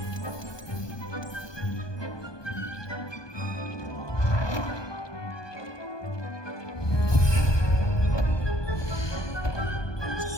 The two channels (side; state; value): right; late; 1.2 ms